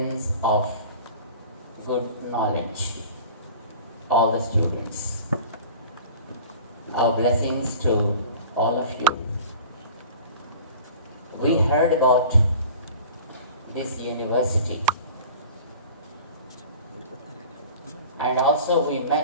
of good knowledge, all the students. Our blessings to all of you. We heard about this university and also we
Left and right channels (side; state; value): both; inverted; correlation -0.42